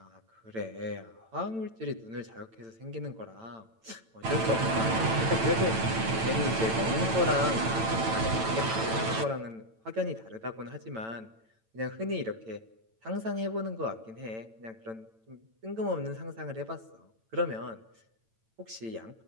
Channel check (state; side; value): late; left; 9.0 ms